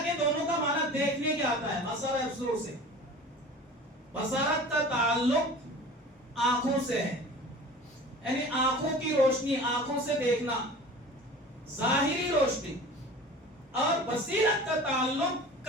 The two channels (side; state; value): both; normal; correlation 0.40